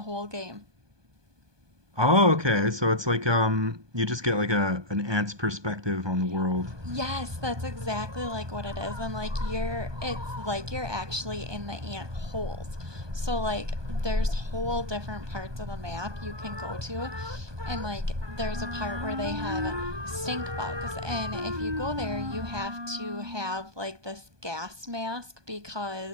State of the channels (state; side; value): late; left; 1.2 ms